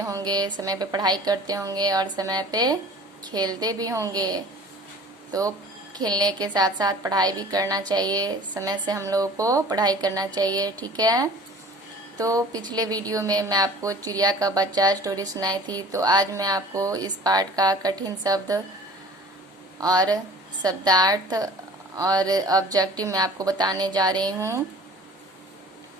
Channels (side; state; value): both; normal; correlation 0.46